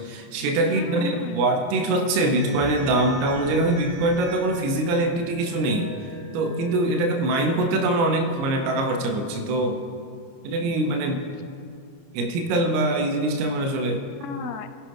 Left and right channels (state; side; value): late; left; 29 ms